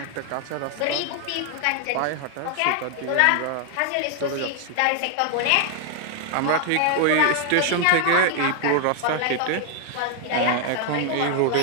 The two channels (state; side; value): different; both; correlation 0.00